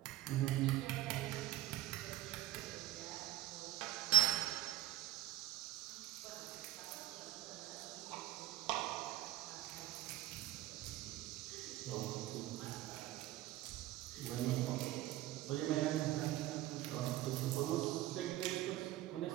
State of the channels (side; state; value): left; quieter; 16.1 dB